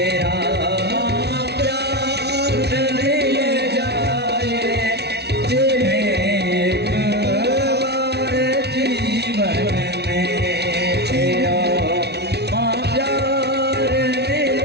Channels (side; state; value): left; late; 0.49 ms